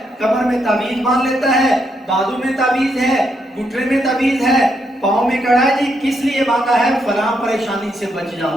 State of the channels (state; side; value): normal; both; correlation 0.78